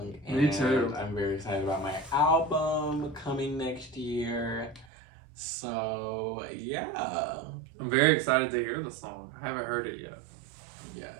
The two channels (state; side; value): drops out; left; at 4.9 s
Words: And me too. I'm very excited about my album coming next year. So yeah, I'm very excited to hear the song. I haven't heard it yet. Yeah,